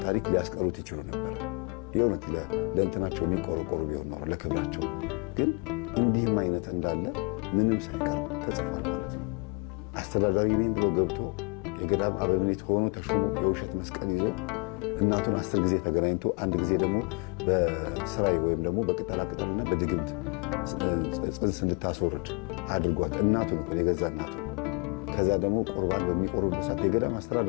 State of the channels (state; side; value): quieter; right; 32.9 dB